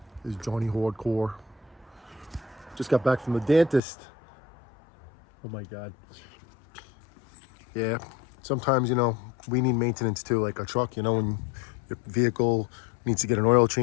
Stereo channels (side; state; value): right; drops out; at 3.8 s